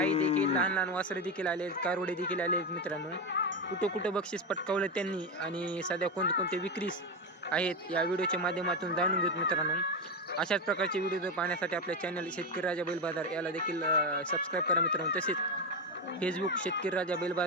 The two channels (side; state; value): both; normal; correlation 0.13